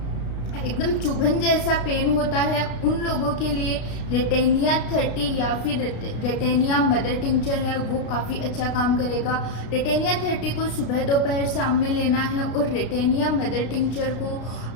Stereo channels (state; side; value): late; right; 33 ms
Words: एकदम चुभन जैसा पेन होता है, उन लोगों के लिए रेटेनिया 30 या फिर रेटेनिया मदर टिंचर है वो काफ़ी अच्छा काम करेगा। रेटेनिया 30 को सुबह दोपहर शाम में लेना है और रेटेनिया मदर टिंचर को